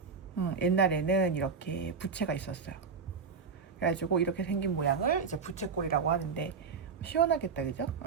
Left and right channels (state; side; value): quieter; left; 5.4 dB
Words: 옛날에는 이렇게 부채가 있었어요. 그래가지고 이렇게 생긴 모양을 이제 부채꼴이라고 하는데 시원하겠다, 그죠?